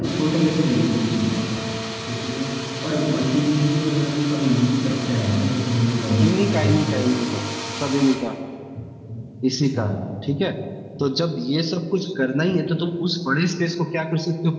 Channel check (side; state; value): both; identical; correlation 1.00